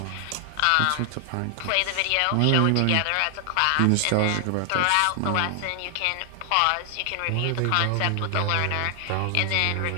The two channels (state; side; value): different; both; correlation 0.00